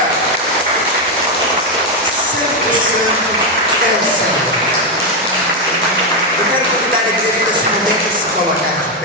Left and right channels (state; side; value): normal; both; correlation 0.06